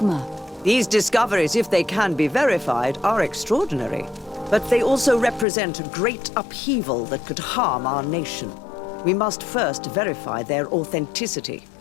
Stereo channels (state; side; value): drops out; right; at 5.5 s